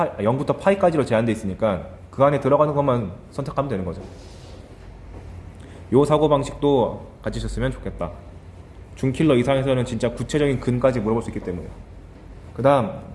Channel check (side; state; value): both; identical; correlation 1.00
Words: 파이까지로 제한되어 있으니까 그 안에 들어가는 것만 선택하면 되는 거죠. 요 사고방식도 가지셨으면 좋겠다. 중킬러 이상에서는 진짜 구체적인 근까지 물어볼 수 있기 때문에. 그 다음